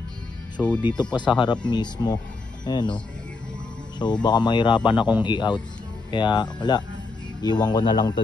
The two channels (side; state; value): right; quieter; 3.7 dB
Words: So dito pa sa harap mismo. Ayan, oh. So baka mahirapan akong i-out. Kaya wala, iwan ko na lang to